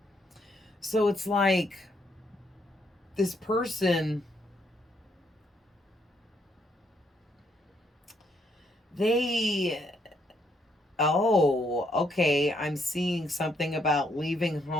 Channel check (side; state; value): both; normal; correlation 0.73